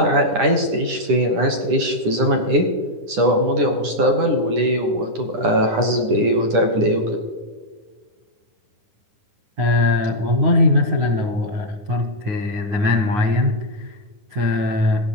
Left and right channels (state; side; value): late; left; 10 ms